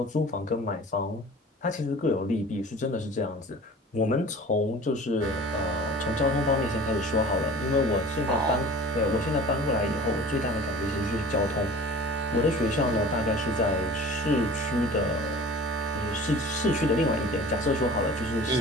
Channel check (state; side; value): normal; both; correlation 0.42